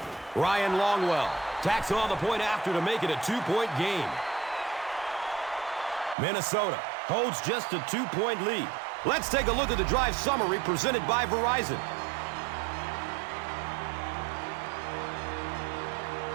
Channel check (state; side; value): drops out; left; at 6.2 s